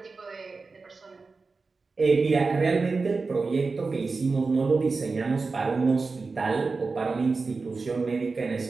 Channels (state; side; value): quieter; left; 4.1 dB